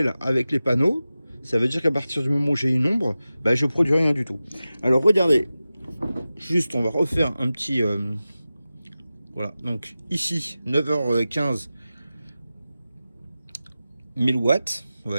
avec les panneaux, ça veut dire qu'à partir du moment où j'ai une ombre, bah, je produis rien du tout. Alors, regardez, juste on va refaire un petit... voilà, donc ici, 9h15, 1000 watts, on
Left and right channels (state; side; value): inverted; both; correlation -0.94